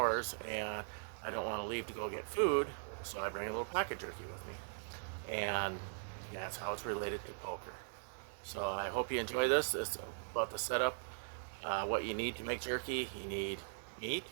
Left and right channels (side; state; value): left; silent; digital silence